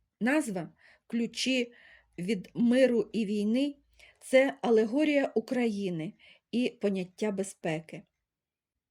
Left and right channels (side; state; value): both; identical; correlation 1.00